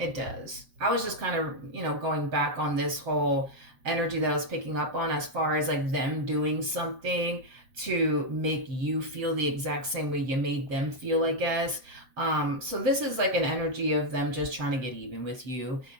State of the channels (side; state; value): left; late; 7.7 ms